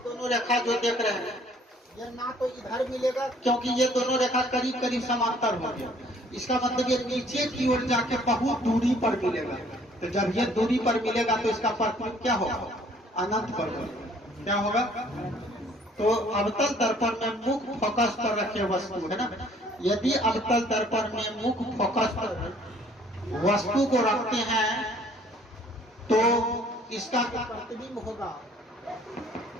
दोनों रेखा जो देख रहे हैं ये ना तो इधर मिलेगा क्योंकि ये दोनों रेखा करीब करीब समांतर हो गया, इसका मतलब ये नीचे की ओर जाके बहुत दूरी पर मिलेगा। तो जब ये दूरी पर मिलेगा तो इसका प्रतिबिंब क्या होगा, अनंत पर होगा। क्या होगा, तो अवतल दर्पण में मुख्य फोकस पर रखे वस्तु है ना, यदि अवतल दर्पण में मुख्य फोकस पर वस्तु को रखते हैं तो इसका प्रतिबिंब होगा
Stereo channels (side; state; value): both; normal; correlation 0.58